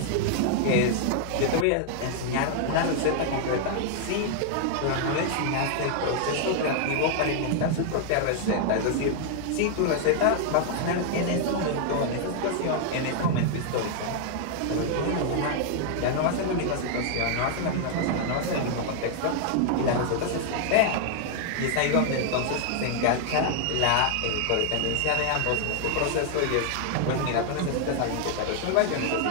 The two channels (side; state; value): both; different; correlation 0.00